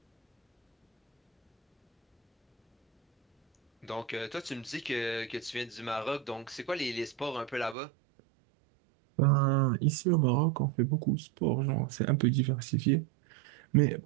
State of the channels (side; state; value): left; drops out; at 7.8 s